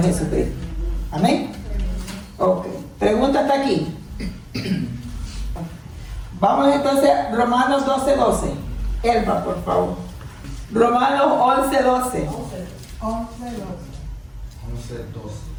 Jesucristo. Amén. Ok. Pregunta hasta aquí. Vamos entonces a Romanos 12:12. Elba, por favor. Romanos 11:12.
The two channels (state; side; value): identical; both; correlation 1.00